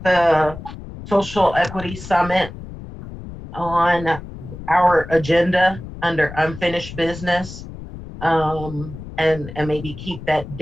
the social equity summit on our agenda under unfinished business, and maybe keep that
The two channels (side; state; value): left; noise; rumble, 12 dB below the sound